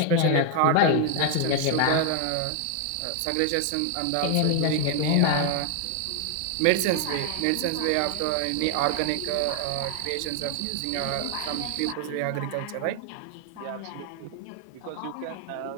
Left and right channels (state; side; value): different; both; correlation 0.00